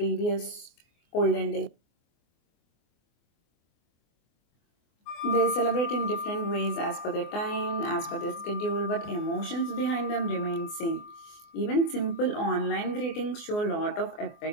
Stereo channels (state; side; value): late; right; 24 ms